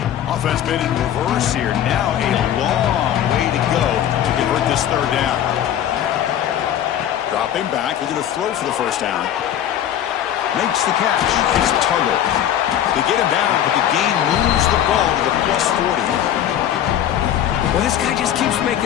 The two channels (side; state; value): right; quieter; 10.7 dB